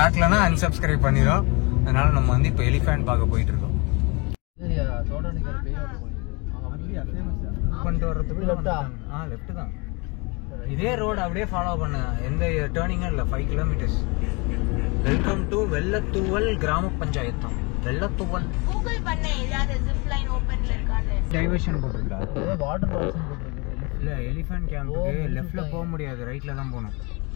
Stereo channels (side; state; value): right; quieter; 28.8 dB